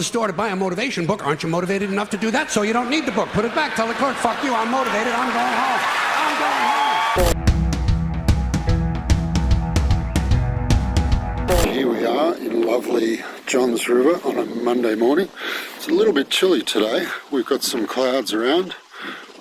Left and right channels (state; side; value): identical; both; correlation 1.00